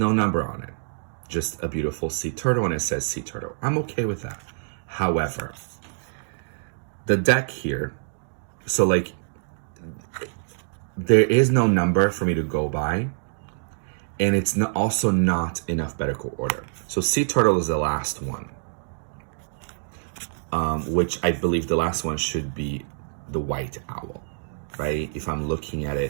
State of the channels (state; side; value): silent; left; digital silence